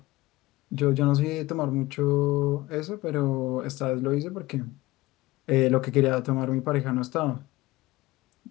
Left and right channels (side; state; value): right; quieter; 18.9 dB